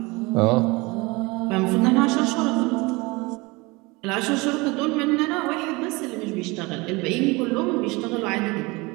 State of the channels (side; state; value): left; quieter; 24.4 dB